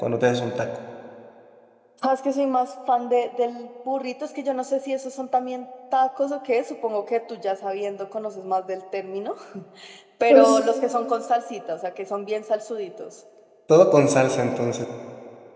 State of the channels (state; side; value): identical; both; correlation 1.00